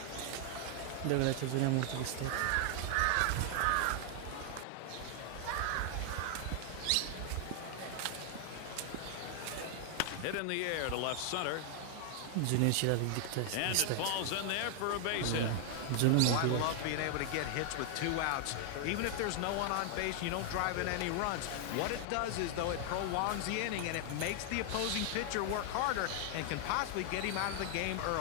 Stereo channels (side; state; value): both; different; correlation 0.00